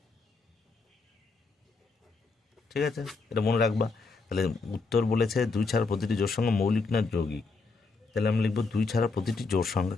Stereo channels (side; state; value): right; quieter; 4.1 dB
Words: ঠিক আছে, এটা মনে রাখবা। তাহলে উত্তর বলেছে 2 ছাড়া প্রতিটি জোড় সংখ্যা মৌলিক না যৌগিক, তাহলে আমি লিখবো 2 ছাড়া প্রতিটি জোড় সংখ্যা